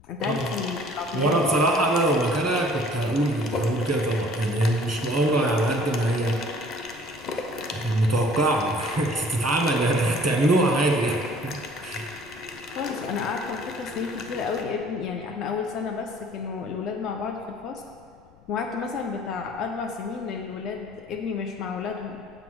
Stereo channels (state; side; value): noise; left; rumble, 27 dB below the sound